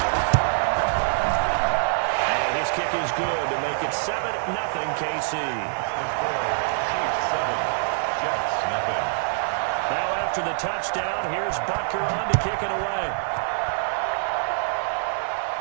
And his kick is good to make it 7-0 KC. Chiefs 7, Jets 0. Now after the touchdown, here's Butker on to kick it away.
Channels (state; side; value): silent; left; digital silence